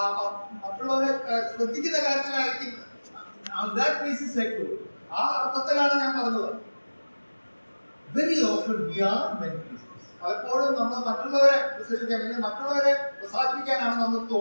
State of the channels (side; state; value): both; inverted; correlation -1.00